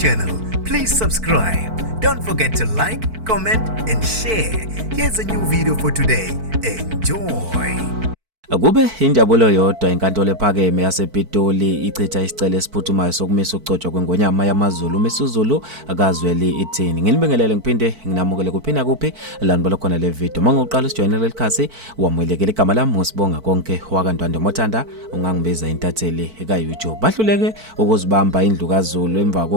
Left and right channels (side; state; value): left; late; 4.5 ms